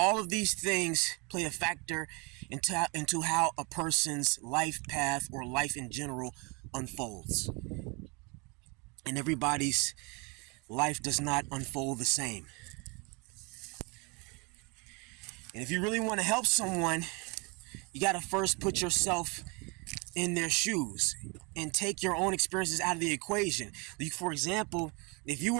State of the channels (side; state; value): left; quieter; 29.9 dB